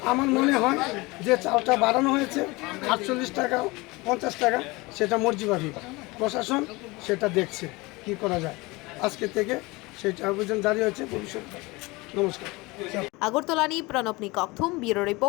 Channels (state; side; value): quieter; right; 23.4 dB